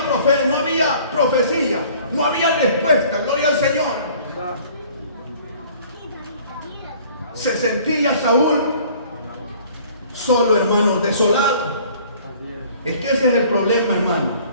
profeta, no había profecía, no había respuesta. Gloria al Señor. Se sentía Saúl solo, hermanos, desolado. Es que ese es el problema, hermano.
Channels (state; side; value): inverted; both; correlation -0.53